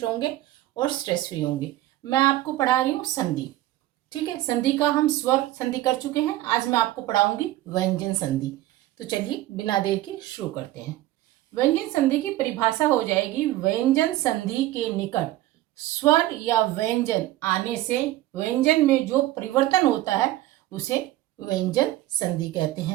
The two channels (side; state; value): left; quieter; 15.6 dB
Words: होंगे और स्ट्रेस फ्री होंगे। मैं आपको पढ़ा रही हूँ संधि। ठीक है, संधि का हम स्वर संधि कर चुके हैं। आज मैं आपको पढ़ाऊंगी व्यंजन संधि। तो चलिए बिना देर के शुरू करते हैं। व्यंजन संधि की परिभाषा हो जाएगी, व्यंजन संधि के निकट स्वर या व्यंजन आने से व्यंजन में जो परिवर्तन होता है उसे व्यंजन संधि कहते